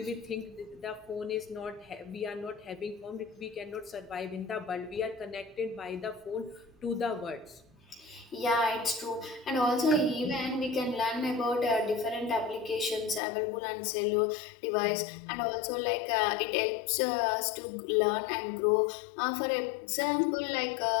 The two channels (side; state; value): right; drops out; at 13.2 s